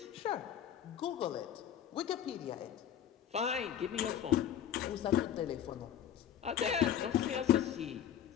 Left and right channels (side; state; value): right; quieter; 9.9 dB